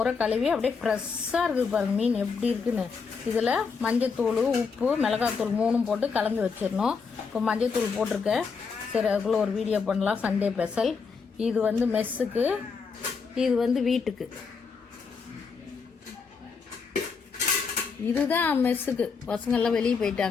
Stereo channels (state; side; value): quieter; right; 5.3 dB